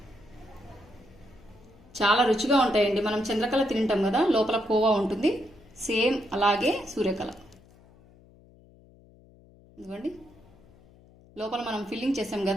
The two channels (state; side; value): noise; left; hum, 26 dB below the sound